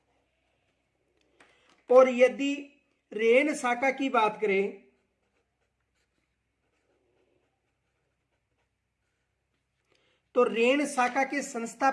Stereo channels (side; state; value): both; identical; correlation 1.00